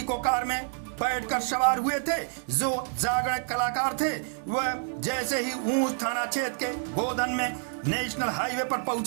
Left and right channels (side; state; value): left; silent; 59 dB below the other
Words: कार में बैठकर सवार हुए थे जो जागरण कलाकार थे। वह जैसे ही ऊंच थाना क्षेत्र के गोदन में नेशनल हाईवे पर